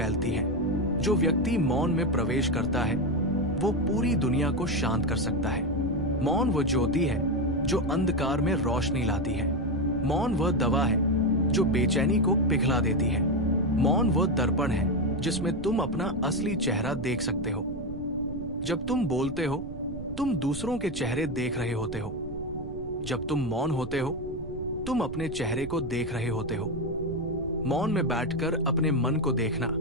है। जो व्यक्ति मौन में प्रवेश करता है वो पूरी दुनिया को शांत कर सकता है। मौन वो ज्योति है जो अंधकार में रोशनी लाती है। मौन वह दवा है जो बेचैनी को पिघला देती है। मौन वो दर्पण है जिसमें तुम अपना असली चेहरा देख सकते हो। जब तुम बोलते हो, तुम दूसरों के चेहरे देख रहे होते हो। जब तुम मौन होते हो, तुम अपने चेहरे को देख रहे होते हो। मौन में बैठकर अपने मन को देखना,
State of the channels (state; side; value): noise; right; rumble, 12 dB below the sound